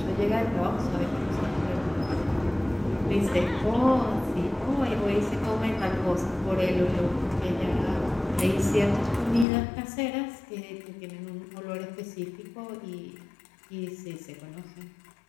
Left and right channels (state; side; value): drops out; right; at 9.5 s